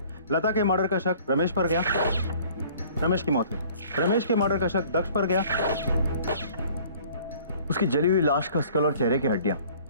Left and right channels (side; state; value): both; inverted; correlation -0.52